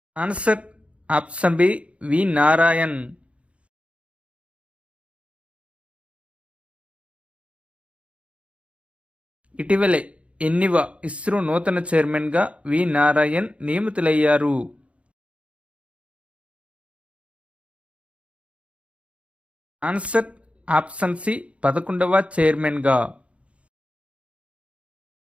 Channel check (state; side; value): late; left; 0.062 ms